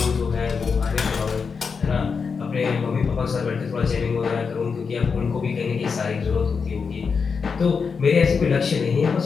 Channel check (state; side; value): quieter; right; 5.5 dB